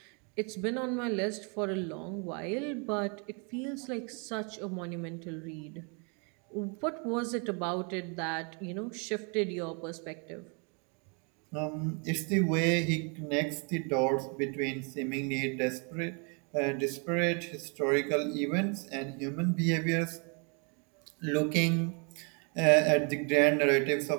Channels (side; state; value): left; quieter; 36.2 dB